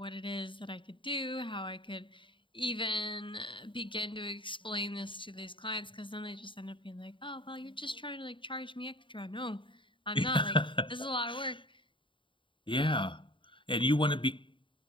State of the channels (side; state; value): right; late; 0.24 ms